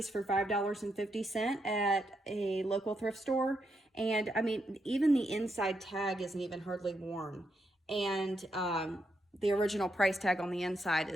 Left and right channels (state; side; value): normal; both; correlation 0.81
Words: for $5.50 at a local thrift store. And I mean, even the inside tag isn't even hardly worn. And the original price tag on the inside